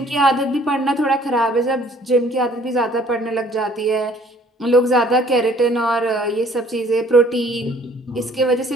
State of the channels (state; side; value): normal; both; correlation 0.57